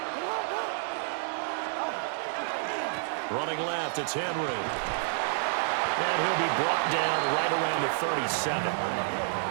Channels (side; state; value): left; silent; 58 dB below the other